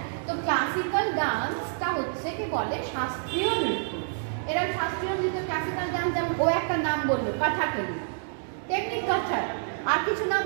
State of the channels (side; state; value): left; silent; digital silence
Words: তো ক্লাসিক্যাল ডান্সটা হচ্ছে কি বলে শাস্ত্রীয় নৃত্য। এরা শাস্ত্রীয় নৃত্য ক্লাসিক্যাল ডান্স, যেমন ও একটা নাম বললো কথাকলি, তেমনি কথক। আর কিছু নাম